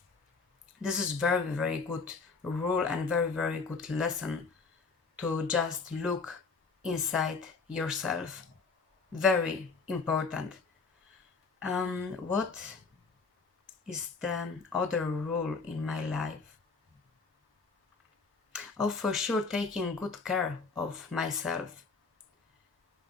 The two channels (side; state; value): right; quieter; 4.5 dB